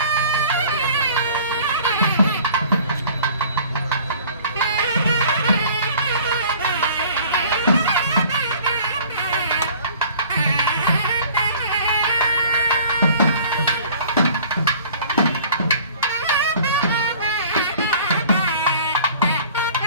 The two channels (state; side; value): inverted; both; correlation -0.49